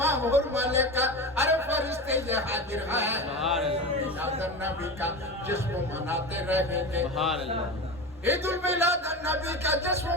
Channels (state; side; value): normal; both; correlation 0.27